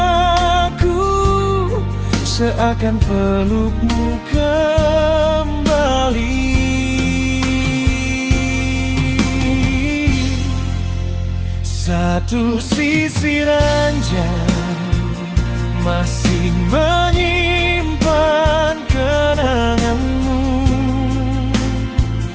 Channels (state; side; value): identical; both; correlation 1.00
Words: seakan pelukmu kembali. Satu sisi ranjang masih menyimpan kenanganmu.